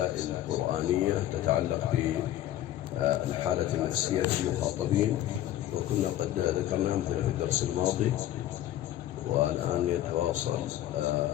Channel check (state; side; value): quieter; right; 13.2 dB